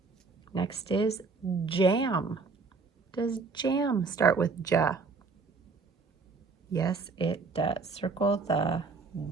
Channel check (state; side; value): quieter; left; 4.4 dB